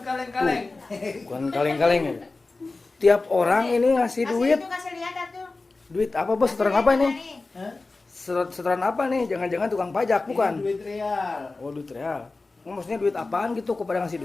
kaleng-kaleng. Bukan kaleng-kaleng ya. Tiap orang ini ngasih duit. Kasih lihat atuh. Duit apa bos? Setoran apa ini? Hah? Setoran apa nih? Jangan-jangan tukang pajak, bukan? Ini duit real. Oh, duit real. Maksudnya duit apaan gitu kepada ngasih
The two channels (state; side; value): quieter; right; 3.5 dB